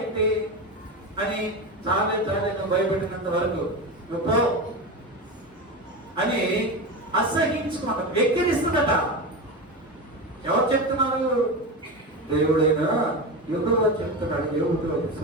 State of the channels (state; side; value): normal; both; correlation 0.21